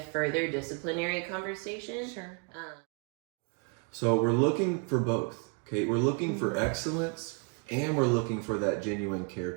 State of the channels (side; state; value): left; quieter; 36.2 dB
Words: further disciplinary conversation. Sure. So we're looking for both. Okay, we're looking for excellence, and we're looking for that genuine care